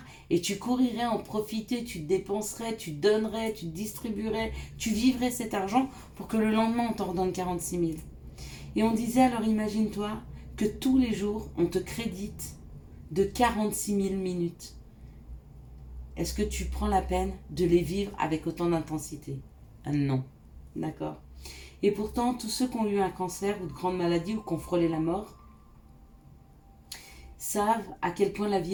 et tu courirais en profiter, tu te dépenserais, tu donnerais, tu distribuerais, tu vivrais cet argent pour que le lendemain on t'en redonne 46 000. Et on disait alors imagine-toi que tous les jours on te crédite de 46 000 minutes. Est-ce que tu prends la peine de les vivre avec autant d'intensité? Non. D'accord. Et pourtant, tous ceux qui ont eu un cancer ou de grandes maladies ou qui ont frôlé la mort savent à quel point la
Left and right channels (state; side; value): identical; both; correlation 1.00